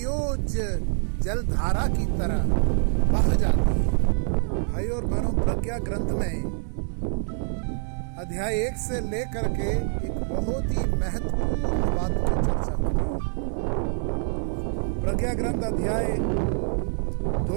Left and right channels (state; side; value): silent; left; digital silence